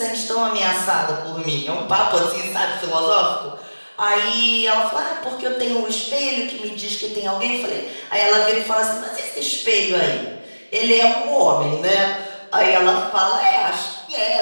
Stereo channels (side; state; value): both; inverted; correlation -1.00